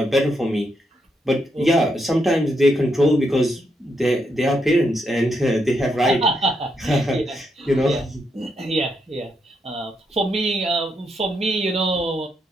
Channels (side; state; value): both; normal; correlation 0.80